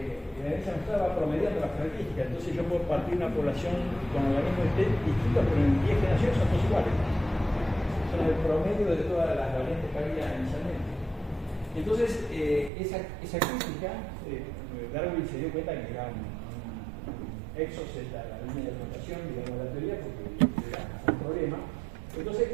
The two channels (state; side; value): drops out; left; at 12.7 s